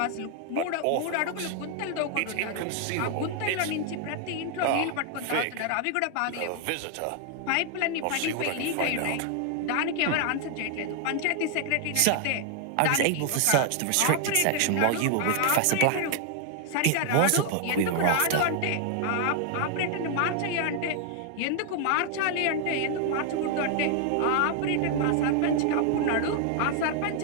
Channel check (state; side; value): different; both; correlation 0.00